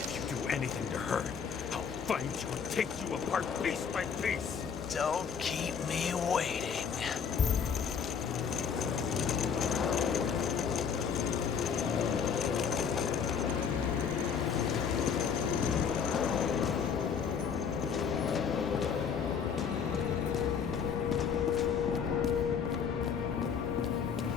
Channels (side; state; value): right; quieter; 6.8 dB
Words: you do anything to her, I'll find you and take you apart piece by piece. Don't keep me waiting.